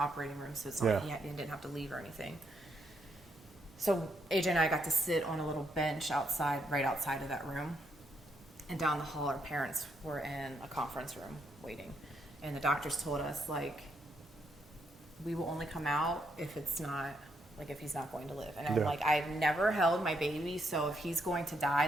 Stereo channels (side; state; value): both; normal; correlation 0.76